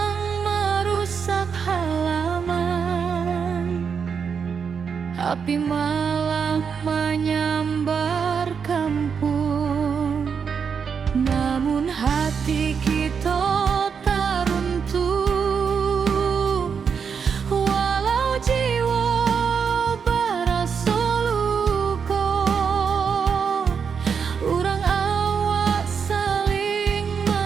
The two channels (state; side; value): quieter; left; 6.4 dB